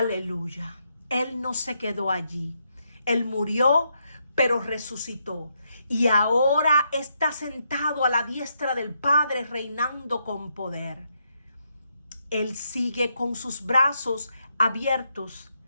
Él no se quedó allí. Él murió, pero resucitó. Y ahora está sentado a la diestra del Padre, reinando con poder. Él sigue con sus brazos abiertos,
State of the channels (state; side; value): inverted; both; correlation -0.80